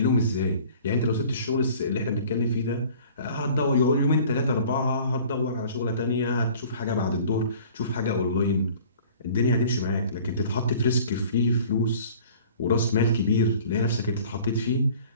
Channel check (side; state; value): both; inverted; correlation -0.49